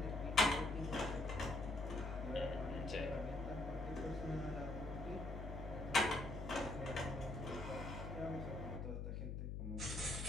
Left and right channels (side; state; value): left; noise; hum, 3 dB below the sound